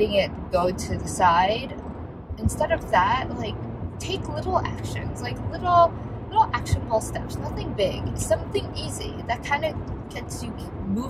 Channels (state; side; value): identical; both; correlation 1.00